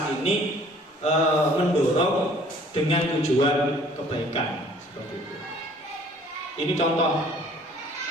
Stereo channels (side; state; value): both; normal; correlation 0.55